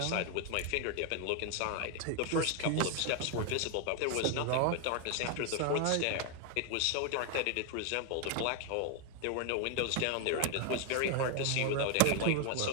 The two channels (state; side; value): different; both; correlation 0.01